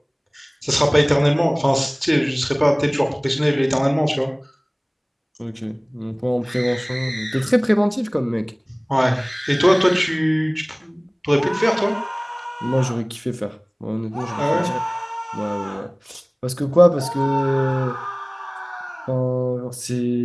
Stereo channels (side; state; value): both; identical; correlation 1.00